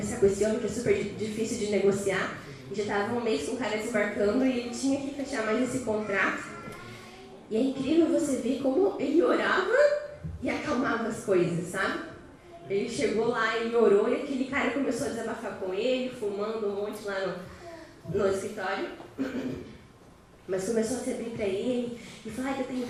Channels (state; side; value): identical; both; correlation 1.00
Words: com esse homem que é super difícil de negociar. E já estava um mês com o cara desembarcando e ele tinha que fechar mais esse contrato. E é incrível você ver como ele orava e acalmava as coisas, sabe? Ele chegou lá, ele orou e aquele cara começou a desabafar com ele, fumando um monte lá no escritório. Mas começou a se abrir para ele e falar que eu tenho